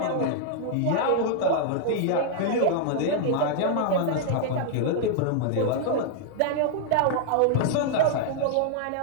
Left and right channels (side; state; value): both; different; correlation -0.01